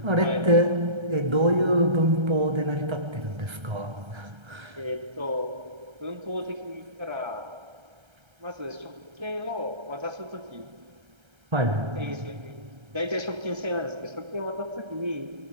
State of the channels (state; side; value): late; left; 1.3 ms